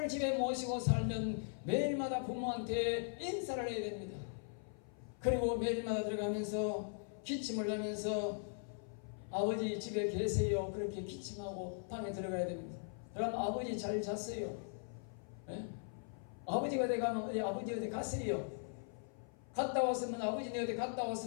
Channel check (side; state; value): right; silent; 51 dB below the other